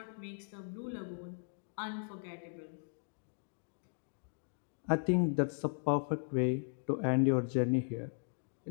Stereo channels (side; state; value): right; silent; digital silence